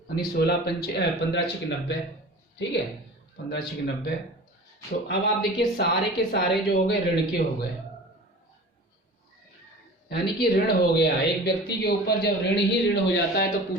यानी 16 पंचे 15 6 90, ठीक है, 15 6 90। तो अब आप देखिए सारे के सारे जो हो गए ऋण के हो गए, यानी कि ऋण हो गया। एक व्यक्ति के ऊपर जब ऋण ही ऋण हो जाता है तो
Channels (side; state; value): both; normal; correlation 0.39